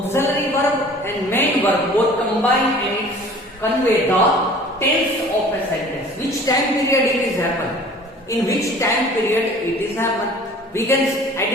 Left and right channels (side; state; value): both; normal; correlation 0.47